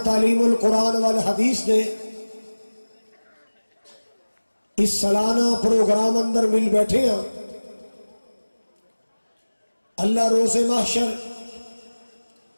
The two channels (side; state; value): both; inverted; correlation -1.00